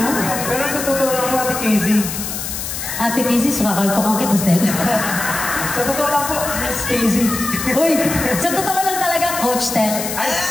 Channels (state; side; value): noise; left; hiss, 5 dB below the sound